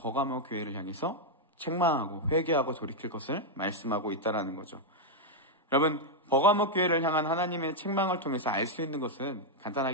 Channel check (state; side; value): normal; both; correlation -0.01